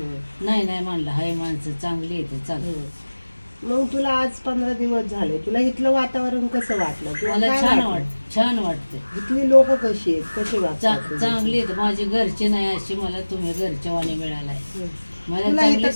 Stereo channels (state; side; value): inverted; both; correlation -1.00